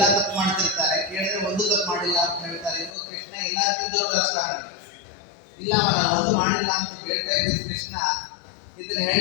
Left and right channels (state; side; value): drops out; right; at 2.9 s